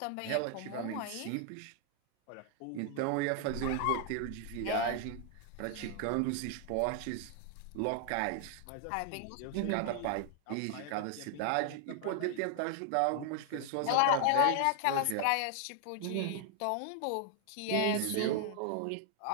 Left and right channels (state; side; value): different; both; correlation 0.00